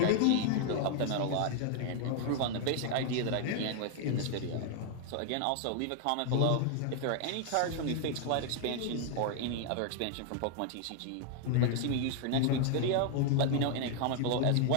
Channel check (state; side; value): different; both; correlation 0.00